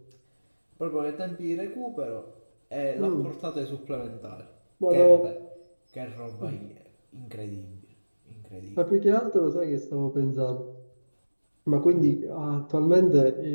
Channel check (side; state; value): both; inverted; correlation -1.00